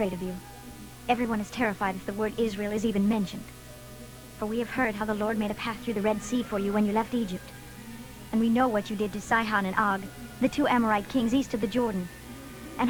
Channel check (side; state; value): both; identical; correlation 1.00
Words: of you. Everyone is terrified if the word Israel is even mentioned. For we have heard how the Lord made a path through the Red Sea for you when you left Egypt. And we know what you did to Sihon and Og, the two Amorite kings east of the Jordan, and